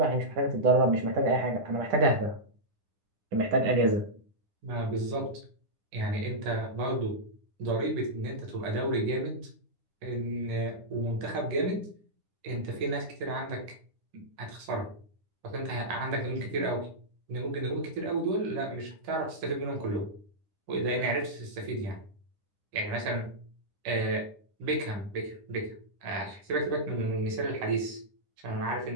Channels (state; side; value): late; left; 9.9 ms